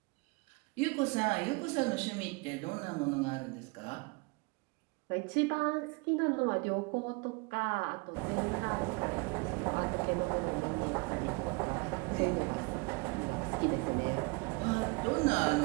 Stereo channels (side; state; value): left; quieter; 29.3 dB